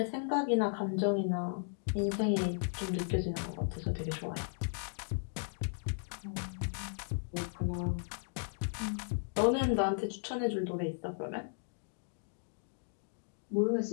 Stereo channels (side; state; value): right; silent; digital silence